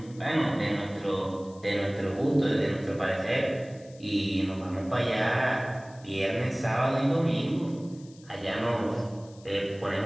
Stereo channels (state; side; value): noise; left; hiss, 25 dB below the sound